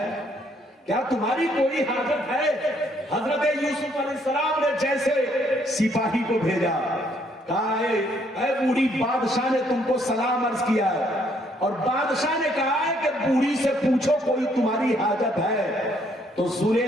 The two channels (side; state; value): both; normal; correlation 0.68